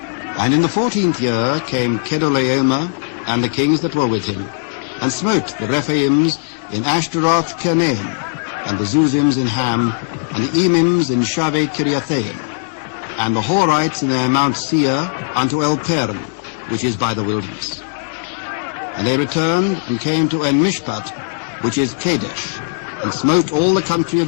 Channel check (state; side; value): silent; right; digital silence